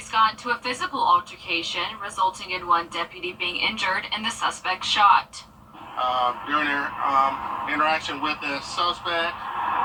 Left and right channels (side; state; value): both; identical; correlation 1.00